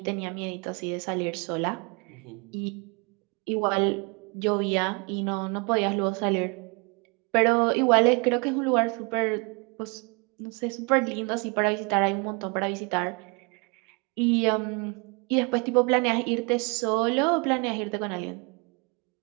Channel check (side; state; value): left; quieter; 31.0 dB